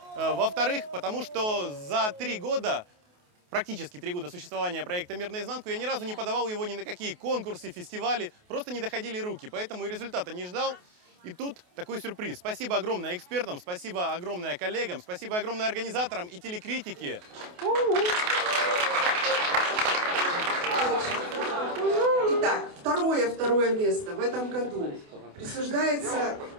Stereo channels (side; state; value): left; late; 28 ms